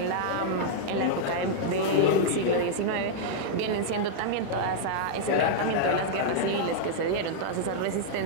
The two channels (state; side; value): different; both; correlation -0.02